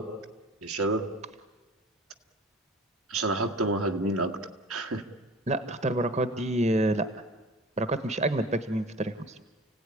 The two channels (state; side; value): normal; both; correlation 0.41